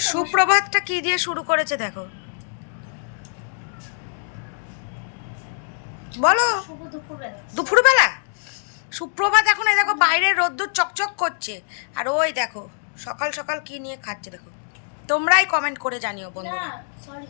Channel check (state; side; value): silent; right; digital silence